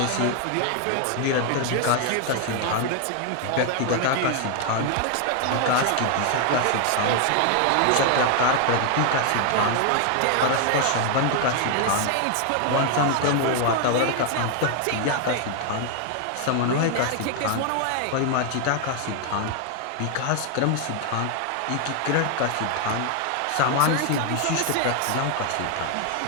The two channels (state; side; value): different; both; correlation 0.00